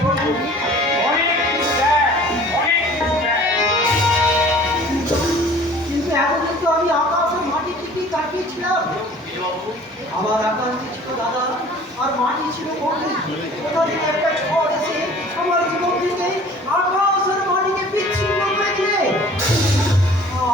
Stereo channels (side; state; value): both; normal; correlation 0.48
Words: অনেক কিছু দেয়, অনেক কিছু দেয়। কিন্তু এতদিন তো আমি আকাশ আর মাটির দিকেই তাকিয়েছিলাম। আমার আকাশ ছিল দাদা আর মাটি ছিল বন্ধু। কোথা থেকে একটা ঝড় এসে আমার জীবন থেকে আকাশ আর মাটিকে বিচ্ছিন্ন করে দিলে।